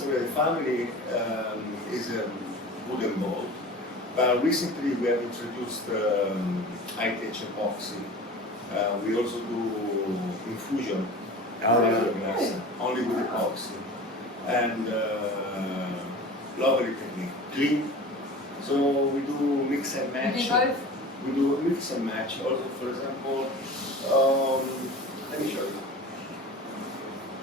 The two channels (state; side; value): normal; both; correlation 0.37